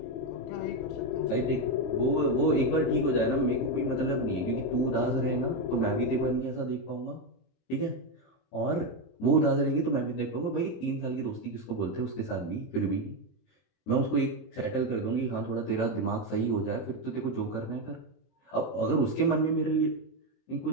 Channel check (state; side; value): late; right; 23 ms